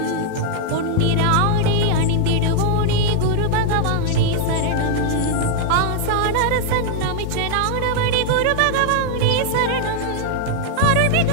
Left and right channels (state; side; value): different; both; correlation 0.00